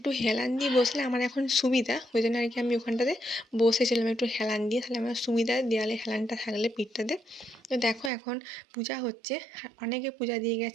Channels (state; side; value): drops out; left; at 8.1 s